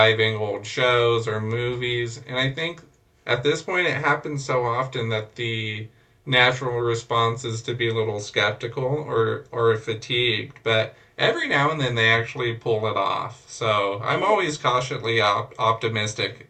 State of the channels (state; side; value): identical; both; correlation 1.00